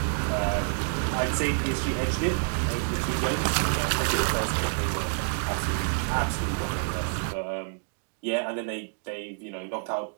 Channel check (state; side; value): silent; left; digital silence